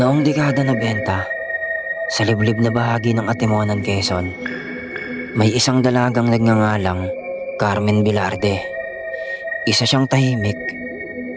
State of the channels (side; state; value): both; identical; correlation 1.00